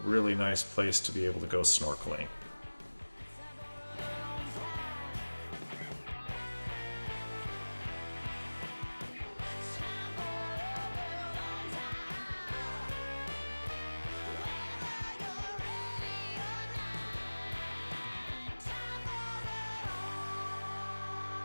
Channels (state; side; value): inverted; both; correlation -1.00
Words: really nice place to be able to go snorkeling.